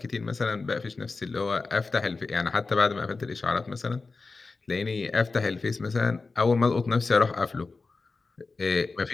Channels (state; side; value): quieter; right; 4.0 dB